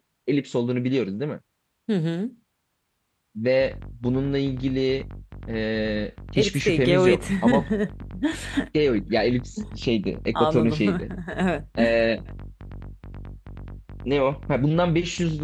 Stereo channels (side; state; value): both; identical; correlation 1.00